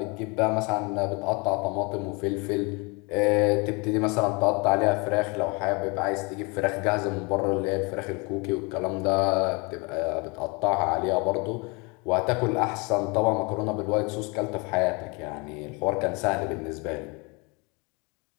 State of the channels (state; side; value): quieter; right; 29.6 dB